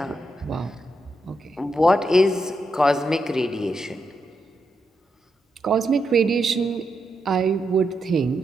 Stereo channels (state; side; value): normal; both; correlation 0.83